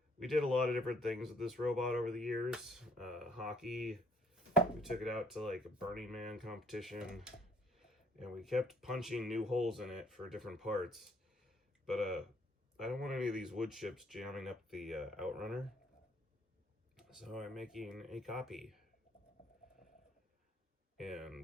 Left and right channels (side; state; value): both; normal; correlation 0.63